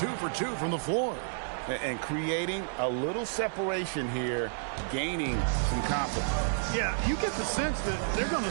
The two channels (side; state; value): left; silent; digital silence